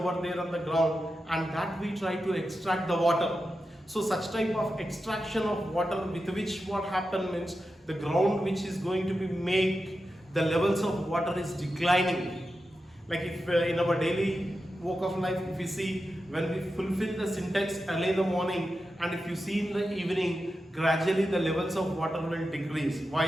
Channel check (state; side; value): normal; both; correlation 0.90